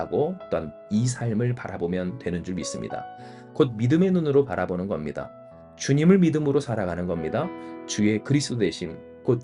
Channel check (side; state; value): both; identical; correlation 1.00